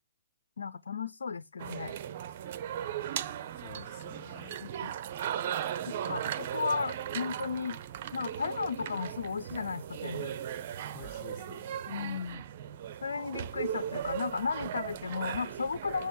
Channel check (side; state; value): both; inverted; correlation -0.65